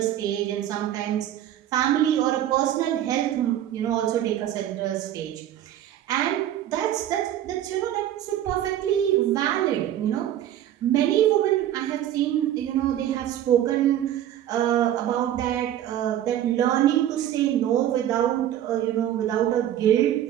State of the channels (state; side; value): quieter; left; 11.7 dB